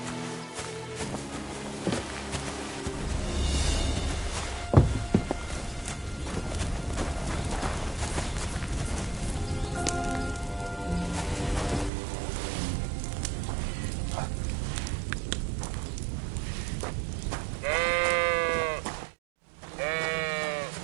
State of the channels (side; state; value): left; drops out; at 11.9 s